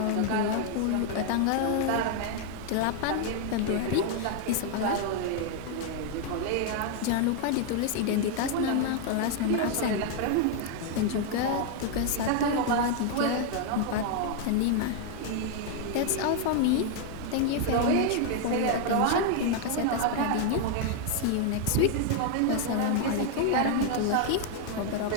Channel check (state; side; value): different; both; correlation 0.00